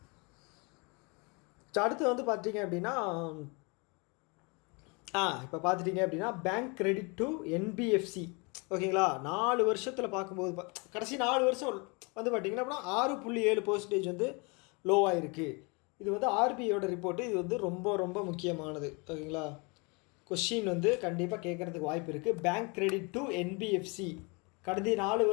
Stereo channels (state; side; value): quieter; right; 30.5 dB